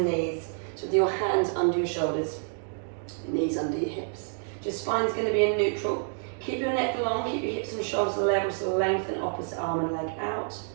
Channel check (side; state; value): left; silent; 57 dB below the other